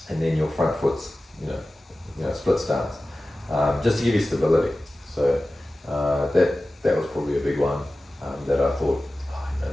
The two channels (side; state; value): both; normal; correlation 0.96